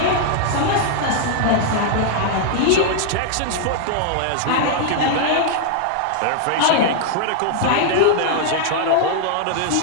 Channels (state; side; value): different; both; correlation 0.00